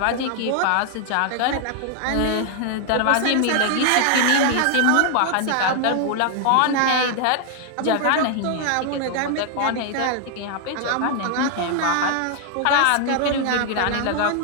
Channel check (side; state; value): both; different; correlation 0.00